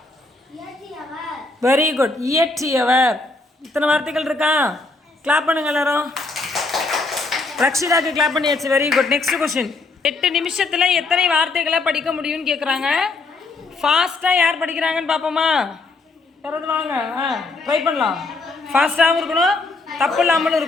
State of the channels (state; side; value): quieter; right; 3.5 dB